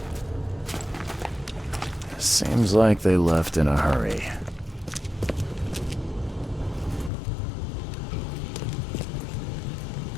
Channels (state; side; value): drops out; right; at 7.1 s